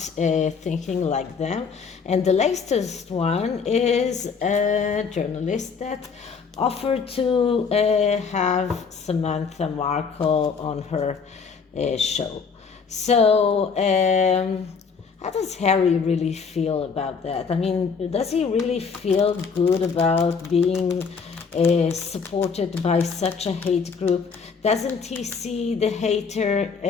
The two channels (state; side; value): quieter; right; 5.6 dB